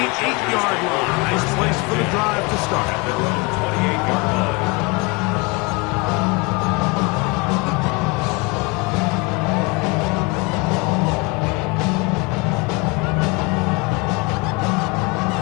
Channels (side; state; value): right; quieter; 27.1 dB